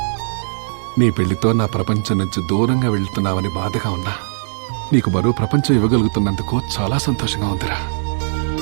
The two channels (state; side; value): silent; left; digital silence